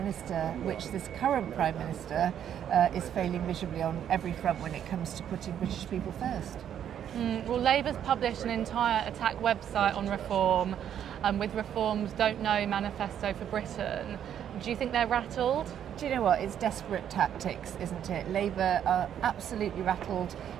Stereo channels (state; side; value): quieter; left; 9.6 dB